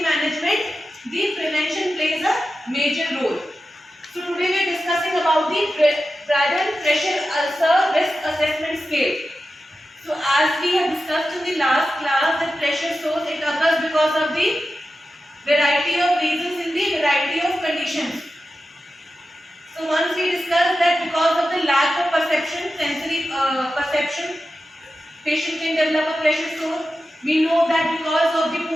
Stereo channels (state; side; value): normal; both; correlation 0.92